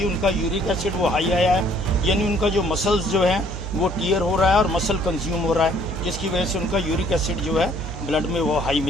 उनका यूरिक एसिड वो हाई आया है, यानी उनका जो मसल्स जो हैं वो टीयर हो रहा है और मसल कंज्यूम हो रहा है, जिसकी वजह से उनका यूरिक एसिड जो है ब्लड में वो हाई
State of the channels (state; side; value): noise; right; hum, 8 dB below the sound